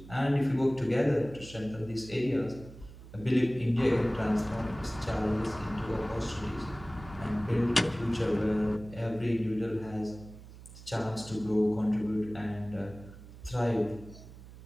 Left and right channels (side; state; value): right; noise; hum, 17 dB below the sound